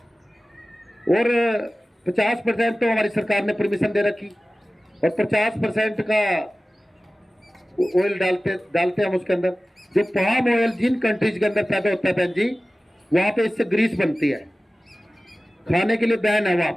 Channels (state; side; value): normal; both; correlation 0.96